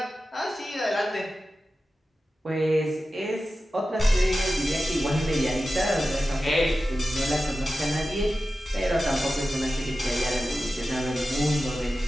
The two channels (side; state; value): both; normal; correlation 0.93